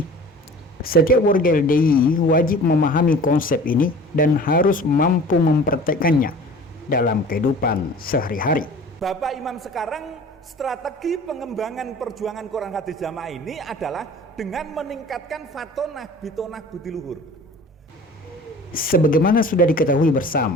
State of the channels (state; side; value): normal; both; correlation 0.43